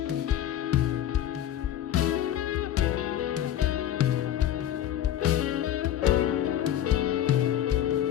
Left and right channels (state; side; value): quieter; right; 11.4 dB